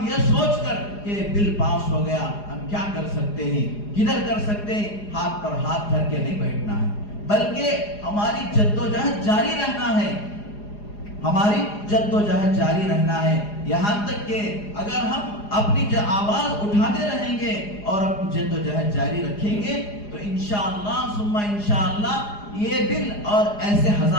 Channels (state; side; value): late; right; 4.9 ms